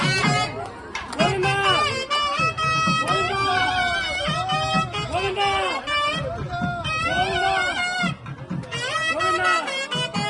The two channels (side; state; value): both; identical; correlation 1.00